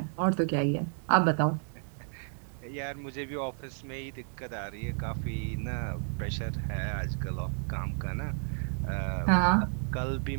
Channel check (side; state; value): left; silent; 57 dB below the other